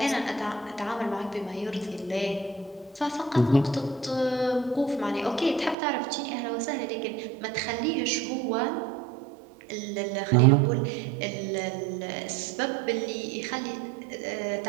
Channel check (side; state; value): left; drops out; at 5.8 s